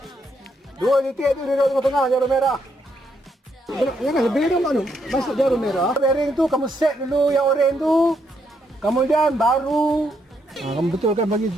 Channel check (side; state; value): both; normal; correlation 0.76